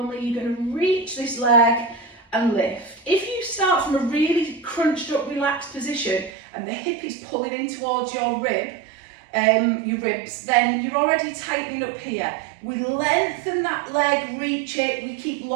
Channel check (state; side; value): drops out; left; at 6.3 s